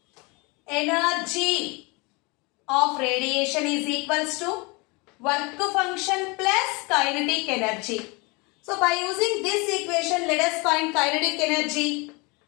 Energy of radiation is equals to work function plus kinetic energy. So by using this equation, let us find kinetic energy.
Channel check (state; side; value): quieter; right; 27.7 dB